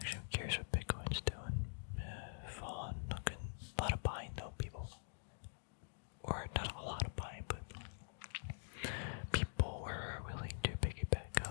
I'm curious what Bitcoin's doing. Fallen, looking a lot of buying though, people. Or not a lot of buying, but people were willing to pick it back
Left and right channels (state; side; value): silent; right; digital silence